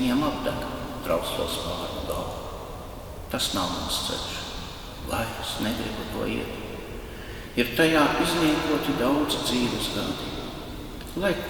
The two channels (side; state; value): both; identical; correlation 1.00